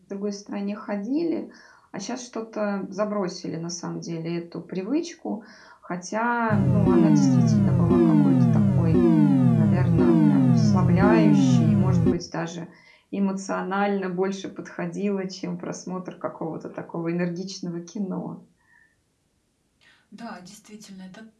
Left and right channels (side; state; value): both; identical; correlation 1.00